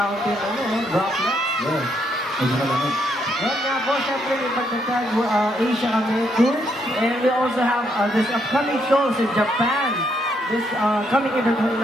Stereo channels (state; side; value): normal; both; correlation 0.74